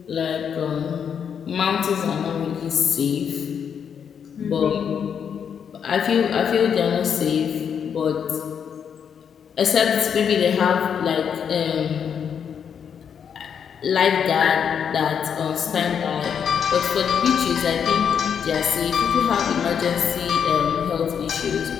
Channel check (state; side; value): quieter; right; 7.6 dB